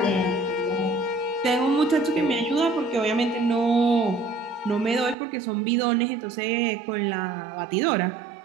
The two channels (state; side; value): drops out; left; at 5.2 s